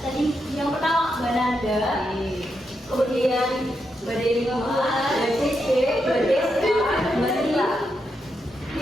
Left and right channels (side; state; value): both; normal; correlation 0.83